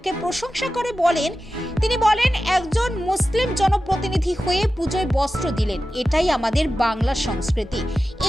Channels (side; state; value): both; normal; correlation 0.93